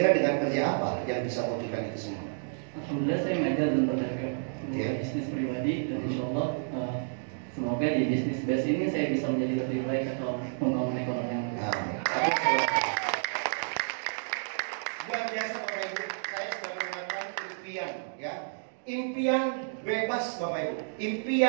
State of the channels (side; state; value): left; silent; digital silence